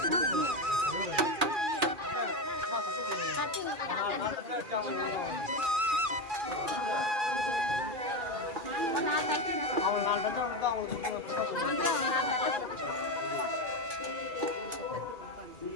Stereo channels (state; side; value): late; left; 2.4 ms